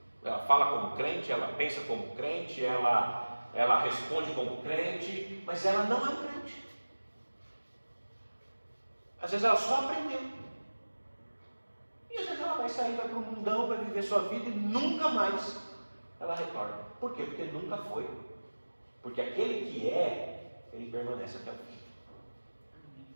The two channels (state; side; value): inverted; both; correlation -1.00